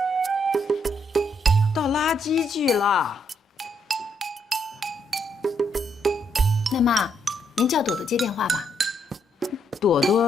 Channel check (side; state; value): both; normal; correlation 0.75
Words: 倒垃圾去了。那妈，您叫朵朵接电话吧。朵